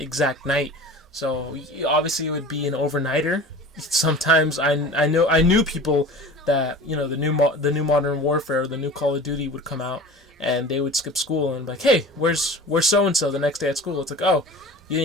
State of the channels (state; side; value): normal; both; correlation 0.39